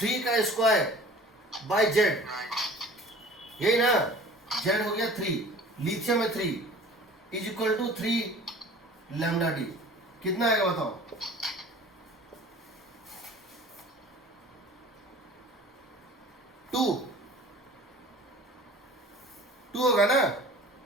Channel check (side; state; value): both; normal; correlation 0.44